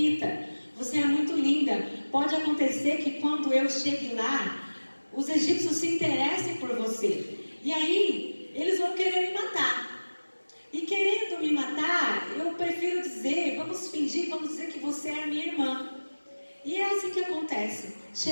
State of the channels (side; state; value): both; inverted; correlation -1.00